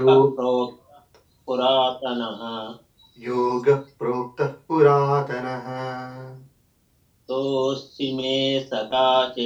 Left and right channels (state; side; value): identical; both; correlation 1.00